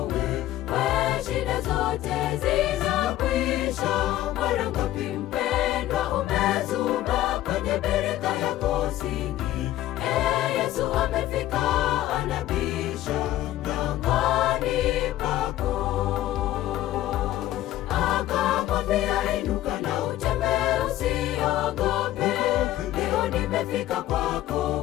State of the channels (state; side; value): quieter; right; 14.3 dB